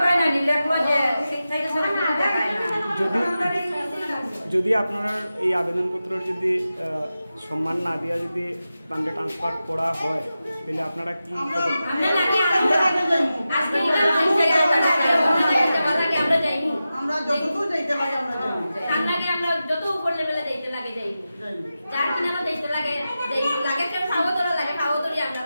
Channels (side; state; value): both; inverted; correlation -0.93